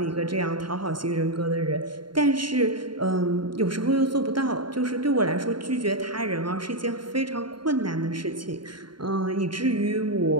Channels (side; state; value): left; late; 0.72 ms